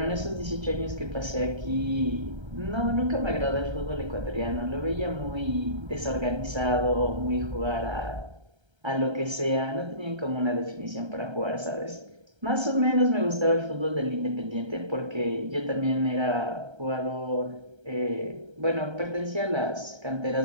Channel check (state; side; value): late; left; 1.3 ms